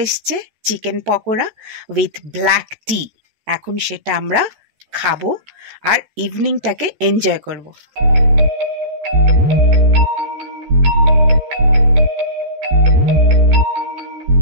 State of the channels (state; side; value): late; left; 14 ms